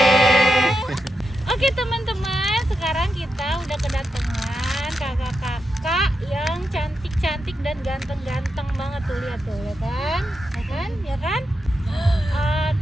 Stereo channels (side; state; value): both; normal; correlation 0.87